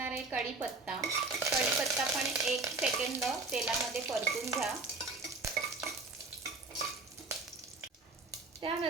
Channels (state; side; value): quieter; left; 3.6 dB